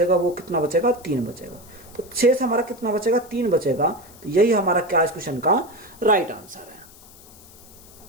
वो कितना बचेगा 3 बचेगा। तो शेष हमारा कितना बचेगा 3 बचेगा। तो यही हमारा क्या इस क्वेश्चन का राइट आंसर है।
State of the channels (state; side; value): noise; left; hiss, 22 dB below the sound